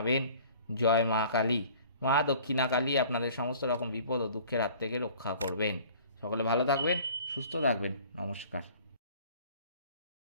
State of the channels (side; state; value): both; inverted; correlation -0.49